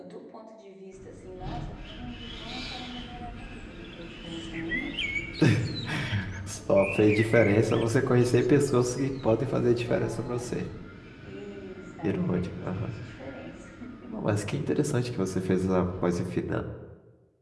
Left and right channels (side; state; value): both; identical; correlation 1.00